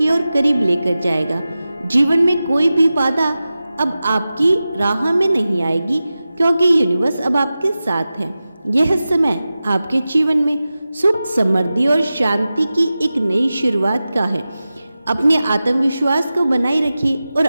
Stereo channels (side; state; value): both; inverted; correlation -0.95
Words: ओर करीब लेकर जाएगा। जीवन में कोई भी बाधा अब आपकी राह में नहीं आएगी क्योंकि यूनिवर्स अब आपके साथ है। यह समय आपके जीवन में सुख, समृद्धि और शांति की एक नई शुरुआत का है। अपने आत्मविश्वास को बनाए रखिए और